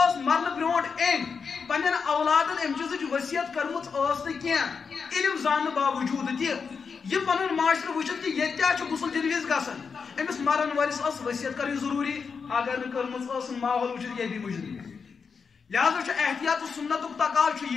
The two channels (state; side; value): quieter; right; 5.6 dB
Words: مرنہٕ برونٛٹھ أمۍ پننٮ۪ن اولادن امہِ چیٖزٕچ ؤصیت کٔرمٕژ ٲس نہٕ کینٛہہ علم زاننہٕ باوجوٗد تہِ یہِ پنُن معاشرٕ وٕچھِتھ کہ ییٚتہِ کیٛاہ چھُ غسل دِنہٕ وِزِ گژھان أمِس مرن وٲلِس ٲس ؤصیت کَرٕنۍ ضروٗری اگر نہٕ کٔرمٕژ ٲسٕن ماحول وٕچھِتھ یہِ بھی مُجرم لہذا چھُ احتیاط تہٕ سُنتُک تقاضہٕ چھُ